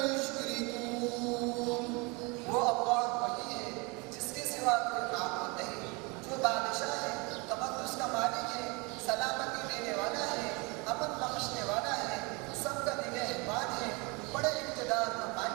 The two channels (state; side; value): quieter; left; 28.4 dB